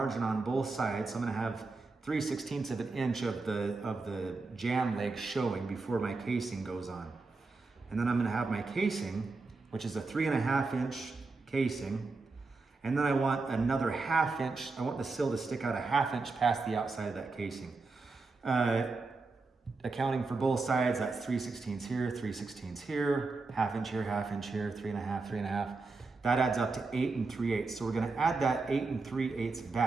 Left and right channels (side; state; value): left; quieter; 3.9 dB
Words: on both sides. So I'm going to have 3/16 of an inch of the jamb leg showing before my casing goes on. And then I'm going to have my casing, which is a 3.5 inch casing. And then I want another 1/2 inch. I want the sill to stick out a 1/2 inch past the outside of that casing. Accounting for both sides, that's 3/16 here, 3/16 here, 1/2 inch here, 1/2 inch here, 3.5, 3.5. That adds up to 8 3/8. So we're going to add that 8 3/8